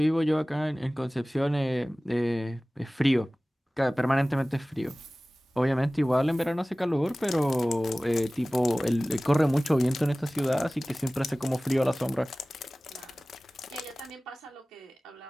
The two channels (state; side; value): normal; both; correlation 0.98